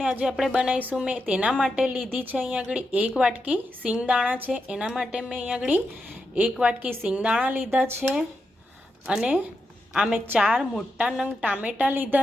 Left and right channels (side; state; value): both; normal; correlation 0.86